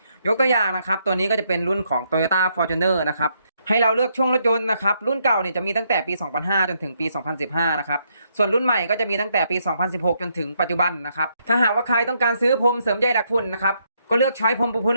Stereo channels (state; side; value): inverted; both; correlation -0.75